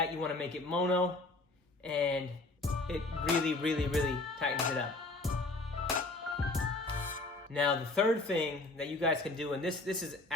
you want to make it mono, and it really, really, really tightens it up. Now, the third thing that you guys can do, and this is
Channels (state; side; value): quieter; right; 3.0 dB